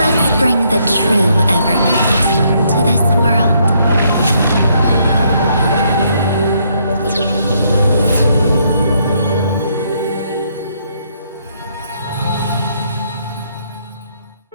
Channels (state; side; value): inverted; both; correlation -0.71